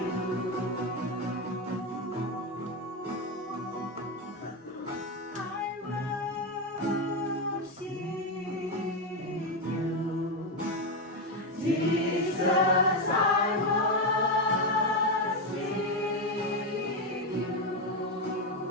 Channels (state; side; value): normal; both; correlation 0.10